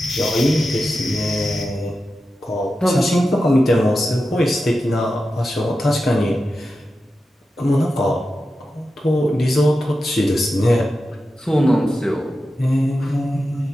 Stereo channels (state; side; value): normal; both; correlation 0.91